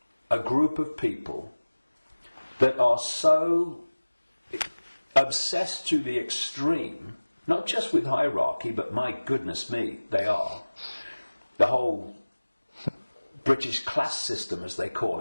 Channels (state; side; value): inverted; both; correlation -1.00